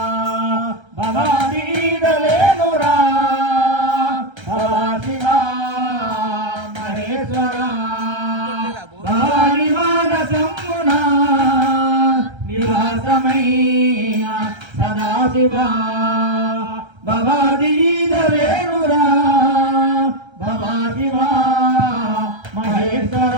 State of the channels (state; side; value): late; left; 1.3 ms